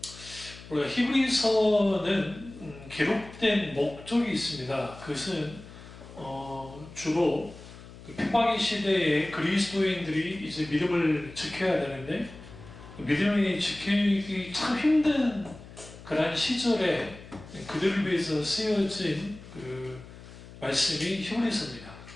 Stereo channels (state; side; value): noise; left; hum, 17 dB below the sound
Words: 우리가 히브리서는 기록된 목적이 있습니다. 그것은 주로 핍박의 시대에 그리스도인들이 이제 믿음을 지켜야 되는데 믿음이 지키기 참 힘든 그런 시절에 그들을 위해서 쓰여진 그 말씀이 히브리서입니다.